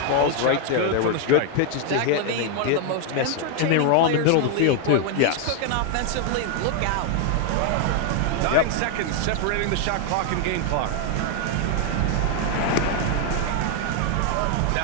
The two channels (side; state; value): both; different; correlation 0.00